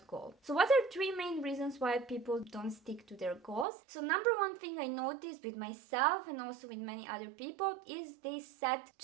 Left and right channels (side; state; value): left; drops out; at 3.7 s